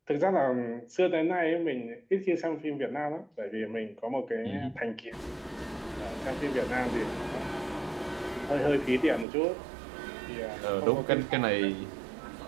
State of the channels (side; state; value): left; drops out; at 9.2 s